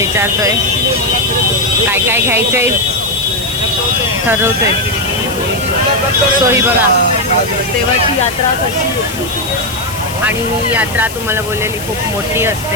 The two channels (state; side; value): noise; left; hiss, 13 dB below the sound